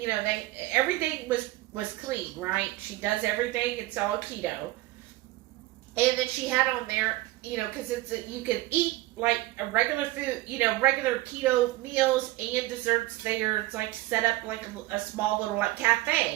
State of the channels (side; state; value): left; quieter; 18.0 dB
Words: everything was clean, right? She does everything. It's all keto. And then she had on there, because you can eat like a regular food, regular keto meals and desserts there. It's like set up like a small little like